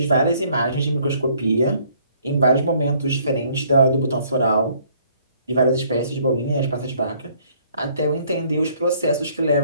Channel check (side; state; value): both; inverted; correlation -0.63